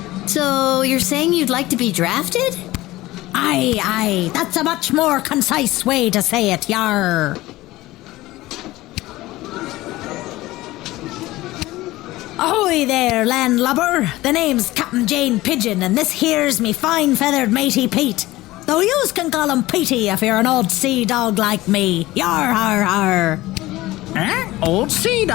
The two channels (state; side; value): quieter; right; 17.9 dB